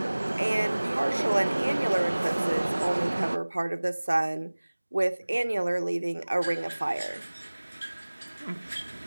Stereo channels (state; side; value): inverted; both; correlation -1.00